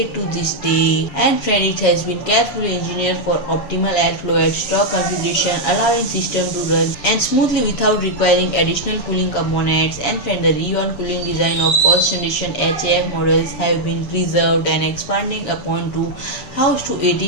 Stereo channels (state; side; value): late; right; 7.0 ms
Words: to this day. And friend, it has been carefully engineered for optimal airflow at stock configuration, allowing system to run and smoothly without requiring additional cooling components. And friend, the Re-on cooling design of first generation HAF models have been preserved and expanding upon to house to